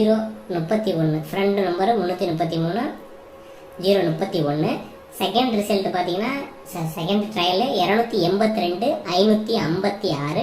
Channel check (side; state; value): both; identical; correlation 1.00